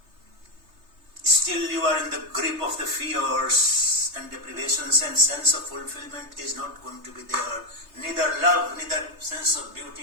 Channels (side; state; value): left; late; 3.3 ms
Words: still you are in the grip of the fears and deprivations, and sense of fulfillment is not going to be there. Neither love, neither sense of